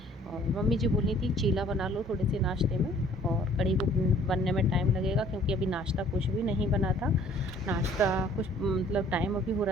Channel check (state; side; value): normal; both; correlation 0.56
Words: और मम्मी जी बोली थी चीला बना लो थोड़े से नाश्ते में, और कढ़ी को बनने में टाइम लगेगा, क्योंकि अभी नाश्ता कुछ भी नहीं बना था। नाश्ता कुछ मतलब टाइम अभी हो